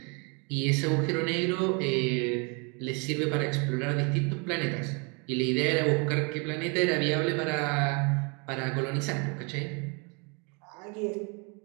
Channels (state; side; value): quieter; left; 32.8 dB